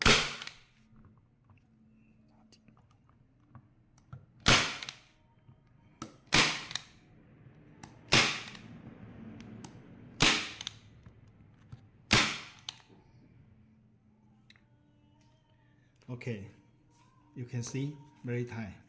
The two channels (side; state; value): both; identical; correlation 1.00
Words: Okay, you can see very tight,